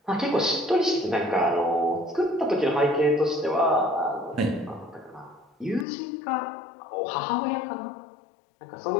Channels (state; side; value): drops out; right; at 5.9 s